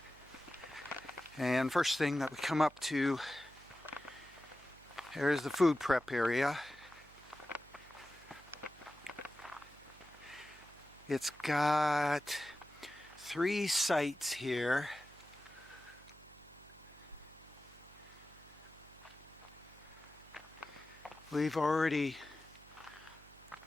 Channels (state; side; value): noise; right; hum, 23 dB below the sound